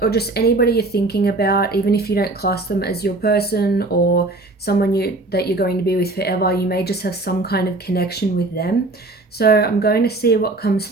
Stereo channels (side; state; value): left; quieter; 3.0 dB